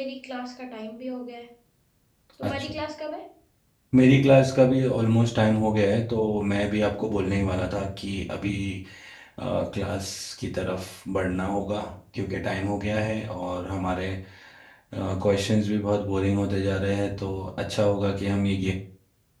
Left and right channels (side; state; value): both; identical; correlation 1.00